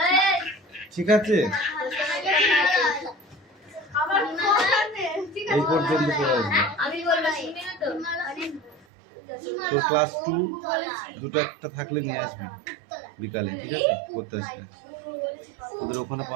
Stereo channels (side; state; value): left; drops out; at 8.8 s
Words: ঠিক আছে? এই পর্যন্ত পড়ে আসবে। তো ক্লাস 2 দুটো একটা থাকলে নিয়ে আসবে বিকালে, ঠিক আছে? করতে আসবে ওদের ওখানে